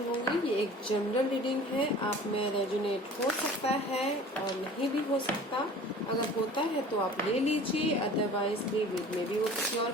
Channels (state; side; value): normal; both; correlation 0.44